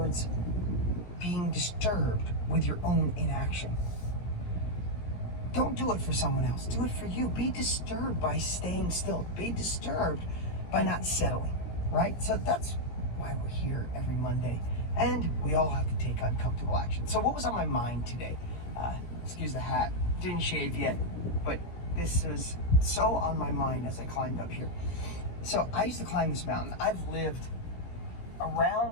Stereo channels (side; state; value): right; late; 17 ms